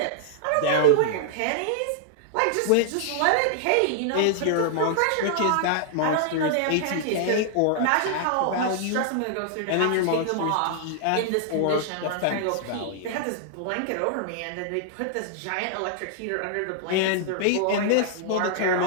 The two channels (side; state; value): both; different; correlation -0.01